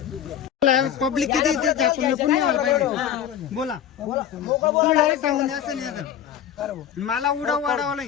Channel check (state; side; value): quieter; right; 9.7 dB